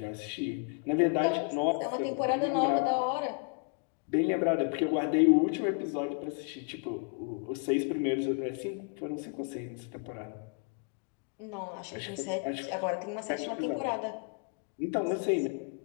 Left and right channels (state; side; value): quieter; right; 37.3 dB